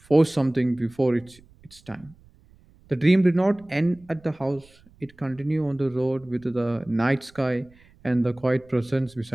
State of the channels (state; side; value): noise; right; rumble, 28 dB below the sound